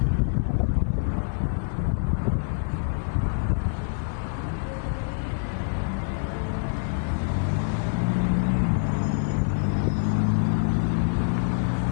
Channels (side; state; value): right; silent; 61 dB below the other